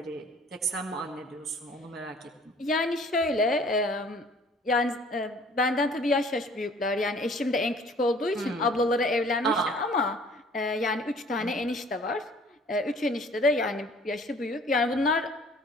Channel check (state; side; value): normal; both; correlation 0.53